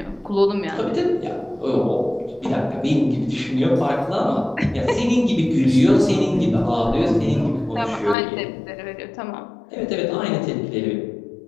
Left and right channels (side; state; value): right; drops out; at 8.2 s